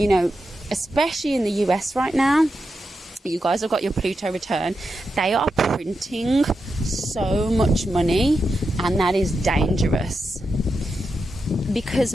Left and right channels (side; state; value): both; normal; correlation 0.87